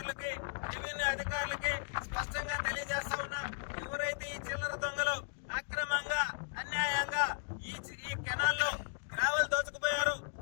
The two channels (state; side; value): silent; right; digital silence